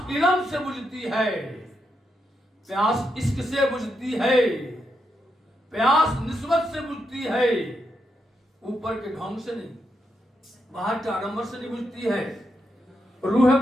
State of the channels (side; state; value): both; normal; correlation 0.83